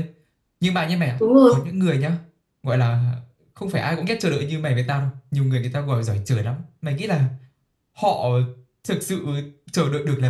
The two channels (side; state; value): both; identical; correlation 1.00